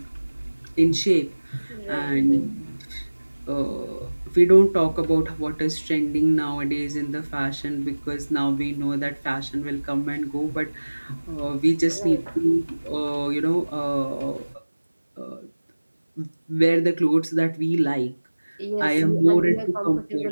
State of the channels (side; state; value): both; inverted; correlation -1.00